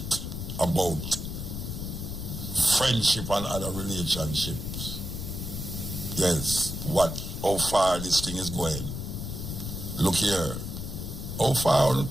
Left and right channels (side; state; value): left; noise; rumble, 6 dB below the sound